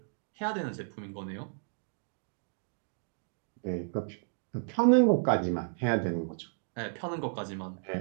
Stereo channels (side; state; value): left; silent; digital silence